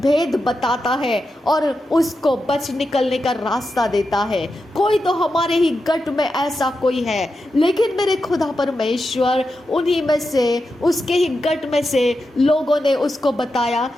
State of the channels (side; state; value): both; normal; correlation 0.88